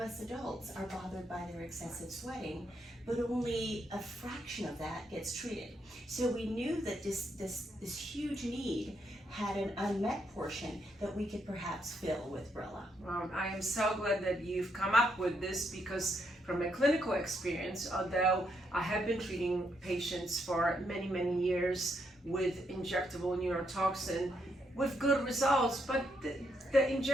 adults are bothered by their excessive sweating, but only a fraction of that gets treated. So we knew that this huge need had an unmet portion that we could perhaps fill with Brella. Well, I am so glad that you've come up with this, because from a clinical experience, although I have been treating patients for many years with injectable neurotoxin with good results, but the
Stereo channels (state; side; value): normal; both; correlation 0.77